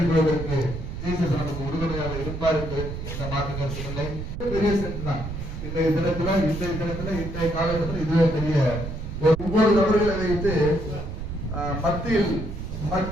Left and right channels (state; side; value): noise; right; rumble, 7 dB below the sound